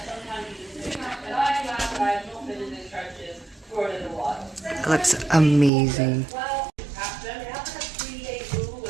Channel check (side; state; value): left; drops out; at 5.7 s